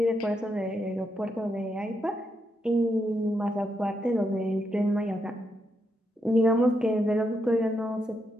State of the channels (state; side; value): normal; both; correlation 0.82